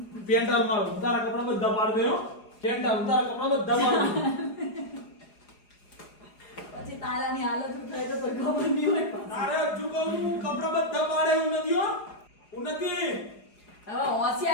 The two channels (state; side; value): late; right; 4.8 ms